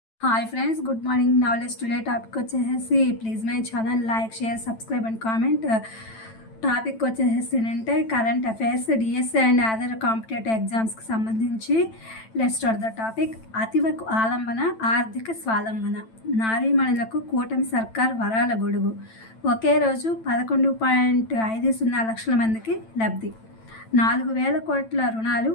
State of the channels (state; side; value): late; right; 9.0 ms